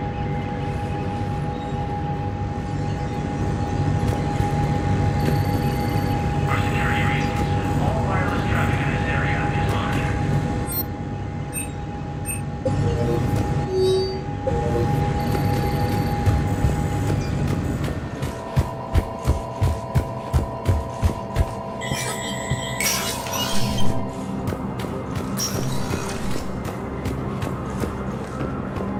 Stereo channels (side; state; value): both; identical; correlation 1.00